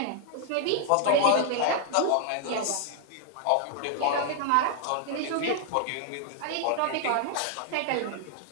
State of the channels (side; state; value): both; different; correlation 0.00